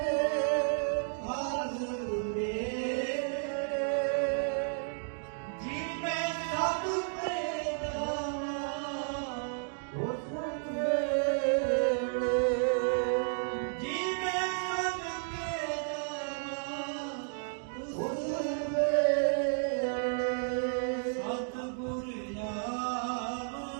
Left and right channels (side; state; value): left; silent; digital silence